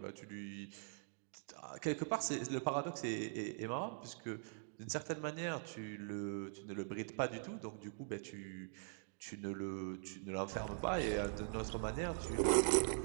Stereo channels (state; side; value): silent; left; digital silence